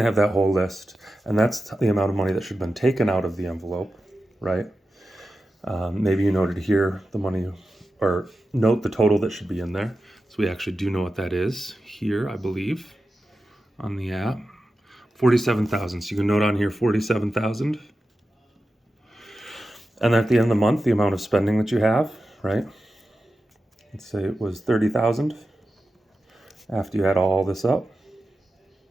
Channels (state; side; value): normal; both; correlation 0.92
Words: to have that whole list, and that's the amount of money that should have been taken out of the envelope, right? Maybe you noted here the money, or note the total that should be in there. So we actually do know what that is here, I believe, on the app. 47,000. So you can note on here 47,000. And at the end of the month, the amount of spending that you have, right? Let's say it was 30,000 after you add all this up.